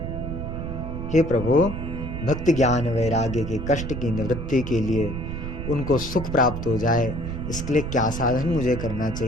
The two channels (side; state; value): right; noise; rumble, 5 dB below the sound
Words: हे प्रभु, भक्ति ज्ञान वैराग्य के कष्ट की निवृत्ति के लिए, उनको सुख प्राप्त हो जाए, इसके लिए क्या साधन मुझे करना